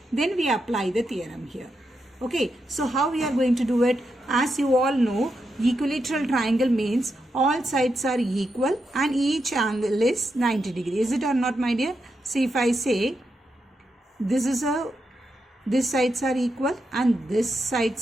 Then we apply the theorem here. Okay, so how we are going to do it? As you all know, equilateral triangle means all sides are equal and each angle is 90 degrees. Is it or not, my dear? See, if I say this sides are equal and this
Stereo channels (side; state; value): both; normal; correlation 0.85